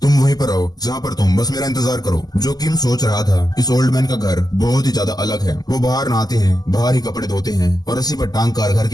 तुम वहीं पर रहो जहाँ पर तुम, बस मेरा इंतजार करो। जो किम सोच रहा था, इस ओल्ड मैन का घर बहुत ही ज्यादा अलग है। वो बाहर नहाते हैं, बाहर ही कपड़े धोते हैं और रस्सी पर टांग कर घर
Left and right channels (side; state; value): right; late; 0.19 ms